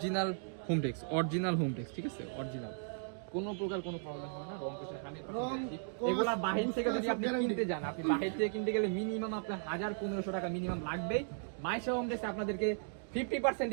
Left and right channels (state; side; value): silent; left; digital silence